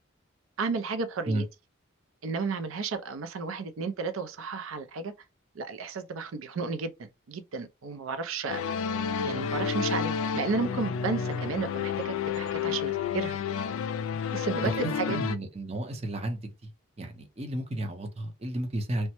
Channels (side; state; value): both; normal; correlation 0.26